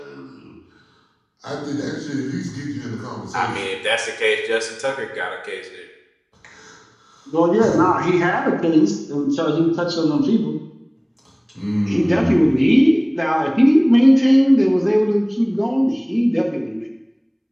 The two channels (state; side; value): identical; both; correlation 1.00